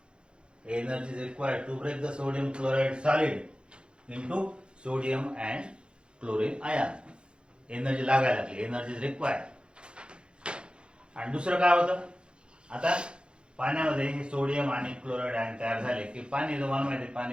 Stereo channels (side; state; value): left; late; 0.054 ms